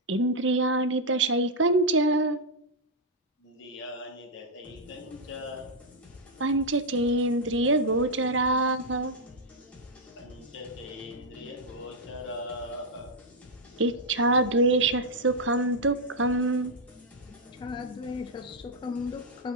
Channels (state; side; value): normal; both; correlation -0.03